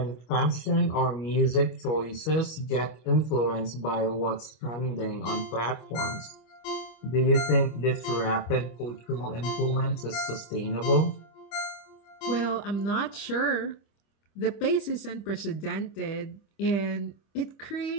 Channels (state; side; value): late; right; 25 ms